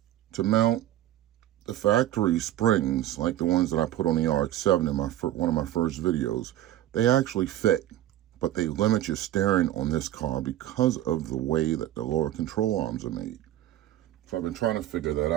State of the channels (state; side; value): quieter; left; 13.4 dB